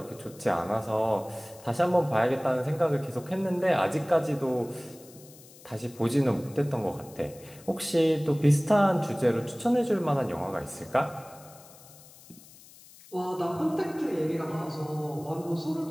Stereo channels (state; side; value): noise; left; hiss, 22 dB below the sound